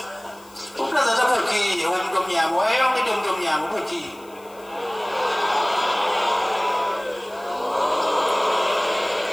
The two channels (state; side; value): noise; left; hiss, 26 dB below the sound